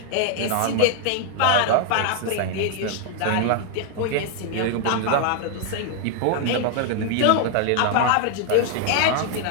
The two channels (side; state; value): both; different; correlation 0.00